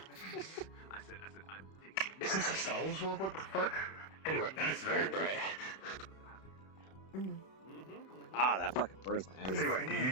Is this a Star Wars world? What the fuck? Anyway, that's very bright. Ah, that fucking burns my eyes. Anyway, do you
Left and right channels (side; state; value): right; late; 31 ms